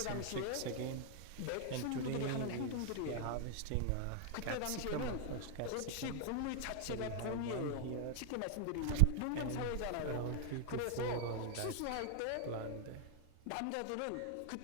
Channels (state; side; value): different; both; correlation 0.00